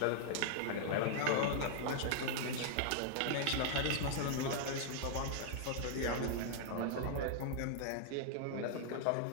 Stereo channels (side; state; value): both; different; correlation -0.01